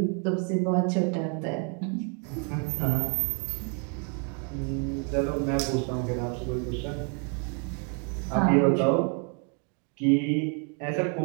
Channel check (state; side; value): quieter; left; 39.9 dB